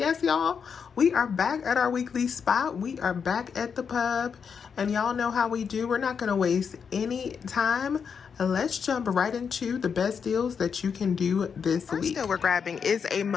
y'all, we are back at our weekly spot. We are back at the pub, and y'all know how we do. We're not going to waste any time. Let's jump right into the best deals that you can do this week. First deal we're grabbing is a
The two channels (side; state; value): right; quieter; 6.5 dB